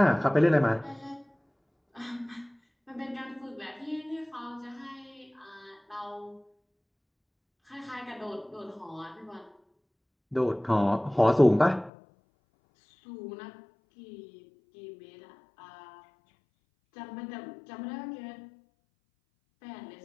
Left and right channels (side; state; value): right; drops out; at 11.9 s